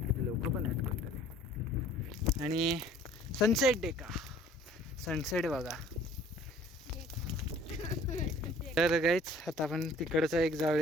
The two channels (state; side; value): normal; both; correlation 0.53